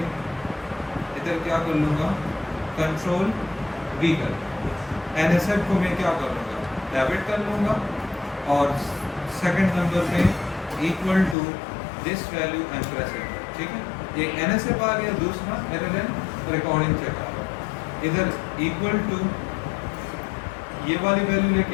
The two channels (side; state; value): right; drops out; at 11.4 s